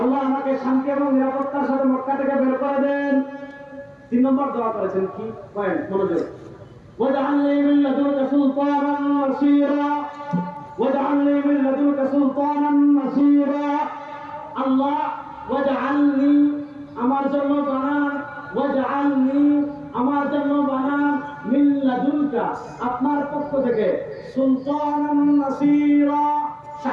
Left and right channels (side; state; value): both; identical; correlation 1.00